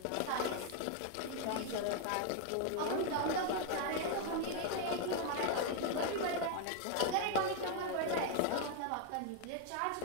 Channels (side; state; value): both; different; correlation 0.00